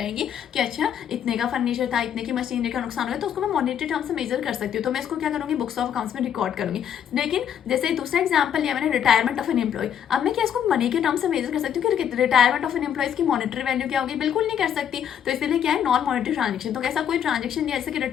कि अच्छा इतने का फर्नीचर था, इतने की मशीनरी का नुकसान हुआ, तो उसको मैं मॉनिटरी टर्म से मेजर कर सकती हूँ। तो मैं इसको क्या करूँगी, बुक्स ऑफ अकाउंट्स में रिकॉर्ड करूँगी। लेकिन जैसे दूसरा एग्जाम्पल लिया मैंने, रिटायरमेंट ऑफ एन एम्प्लॉय। अब मैं क्या इसको मनी के टर्म से मेजर कर सकती हूँ कि रिटायरमेंट ऑफ एन एम्प्लॉयज की मॉनिटरी वैल्यू क्या होगी? बिल्कुल नहीं कर सकती। तो इसलिए क्या है, नॉन मॉनिटरी ट्रांजेक्शन। तो ऐसा कोई ट्रांजेक्शन जैसे कि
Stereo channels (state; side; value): quieter; right; 9.0 dB